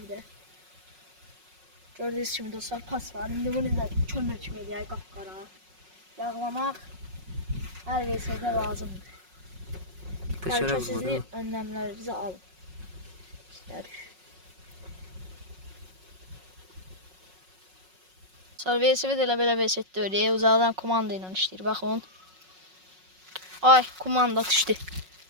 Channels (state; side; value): late; left; 5.4 ms